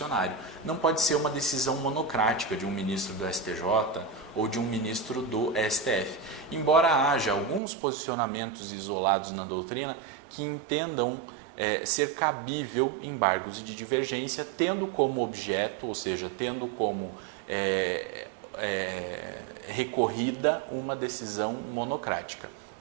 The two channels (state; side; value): drops out; left; at 7.6 s